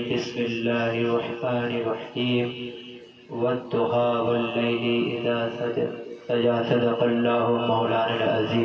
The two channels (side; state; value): both; identical; correlation 1.00